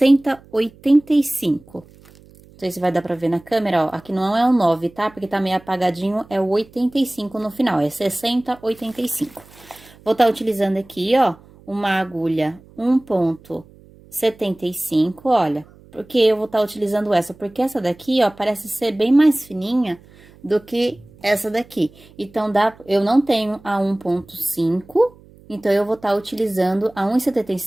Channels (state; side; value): noise; right; hum, 25 dB below the sound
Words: Não sei se vai dar pra ver na câmera, ó, aqui não é um 9, tá? Porque tá meio apagadinho, é o 85 no final, é 6085. Vou estar utilizando aqui, ó, uma agulha 1,75, olha. Por que eu vou estar utilizando essa? Porque essa daqui, ó, parece ser bem mais fininha do que essa daqui. Então, eu não tenho a 1,5, então eu vou estar utilizando a